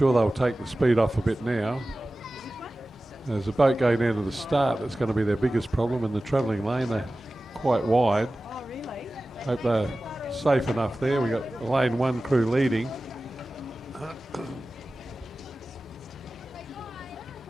they'll take the speed off a bit now. There's a boat going down to the start that's going to be their biggest problem in the travelling lane. They're quite wide. Hope they're safe enough there. We've got lane 1 crew leading.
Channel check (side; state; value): both; normal; correlation 0.96